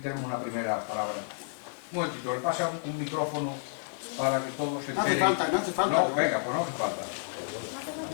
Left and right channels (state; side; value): silent; right; digital silence